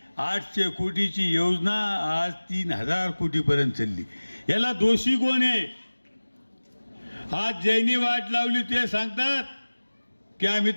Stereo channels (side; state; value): both; inverted; correlation -1.00